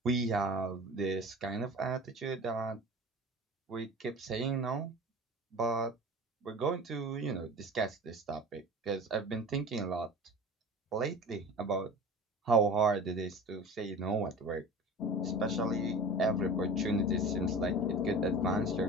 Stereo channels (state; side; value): normal; both; correlation 0.37